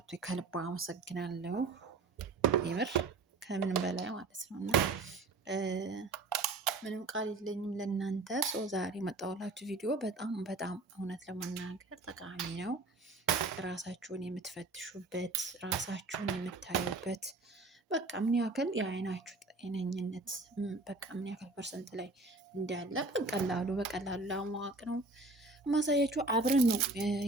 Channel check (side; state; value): left; quieter; 3.3 dB